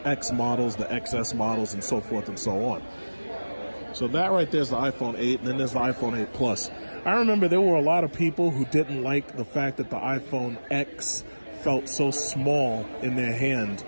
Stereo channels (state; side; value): inverted; both; correlation -1.00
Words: models, the XS models, and so forth and so on. So that right there is the iPhone 8, and then there's the iPhone 8 Plus. I remember there were a lot of people who didn't like the fact that the iPhone X felt so small in their hand,